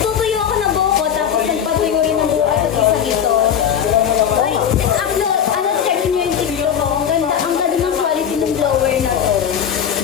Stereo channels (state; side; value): quieter; right; 8.6 dB